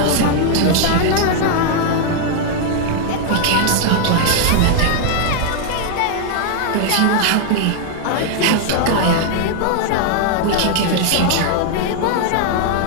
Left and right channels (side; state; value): both; different; correlation 0.00